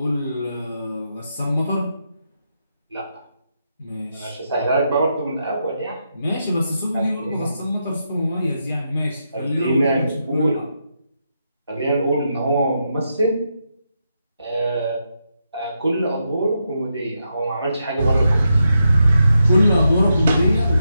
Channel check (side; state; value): both; inverted; correlation -0.84